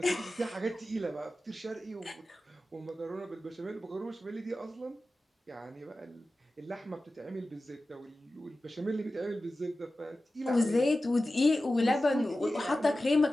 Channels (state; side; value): normal; both; correlation 0.95